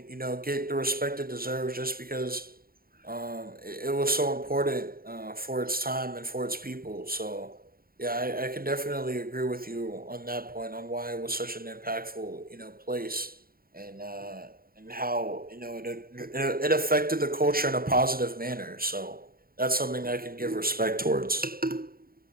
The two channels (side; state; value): left; late; 0.43 ms